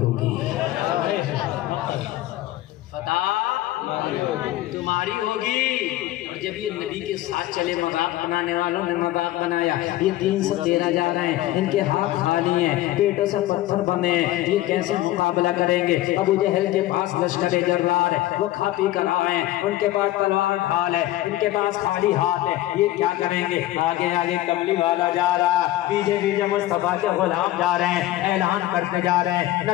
फतह तुम्हारी होगी। और जब ये नबी के साथ चले, मजाक बनाने वालों ने मजाक बनाया, ये 313 जा रहे हैं, इनके हाथ खाली हैं, पेटों से पत्थर बने हैं, ये कैसे मुकाबला करेंगे। अबू जहल के पास लश्कर जर्रार है, वो खा पी कर आए हैं, उनके पास तलवार ढाल है, इनके पास खाली हाथ है, ये क्या करेंगे। आगे आगे कमली वाला जा रहा है, पीछे पीछे मुस्तफा के गुलाम जा रहे हैं, ऐलान करते जा रहे हैं, न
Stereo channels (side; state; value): right; quieter; 15.5 dB